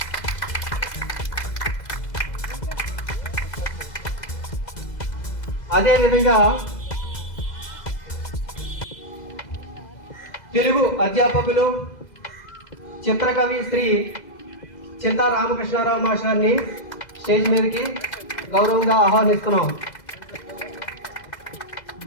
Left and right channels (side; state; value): right; late; 2.0 ms